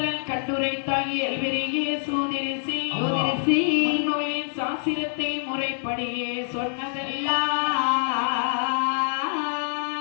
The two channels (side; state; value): right; silent; digital silence